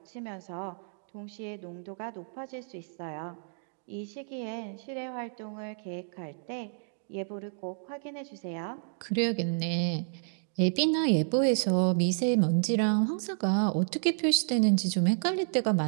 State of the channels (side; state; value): left; silent; digital silence